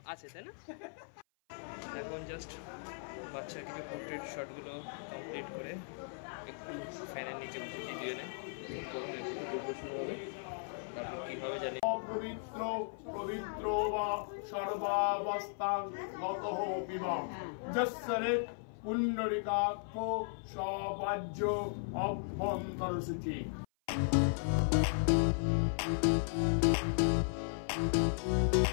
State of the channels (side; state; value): right; silent; 53 dB below the other